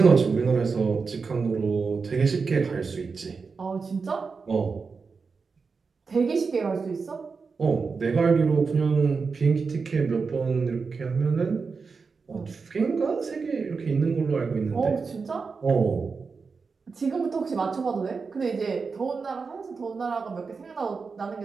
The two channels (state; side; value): quieter; left; 4.9 dB